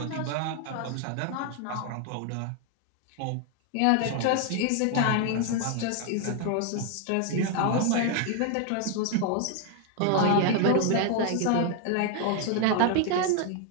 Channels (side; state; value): both; different; correlation 0.01